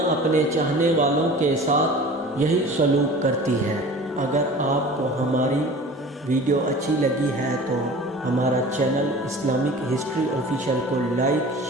اپنے چاہنے والوں کے ساتھ یہی سلوک کرتی ہے۔ اگر آپ کو ہماری ویڈیو اچھی لگی ہے تو ہمارا چینل اسلامک ہسٹری آفیشیل کو لائک،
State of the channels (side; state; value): both; normal; correlation 0.40